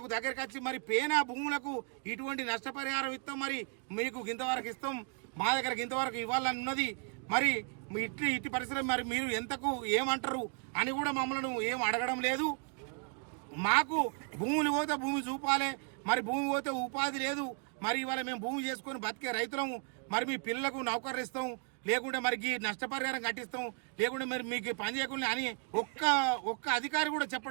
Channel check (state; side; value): quieter; left; 39.8 dB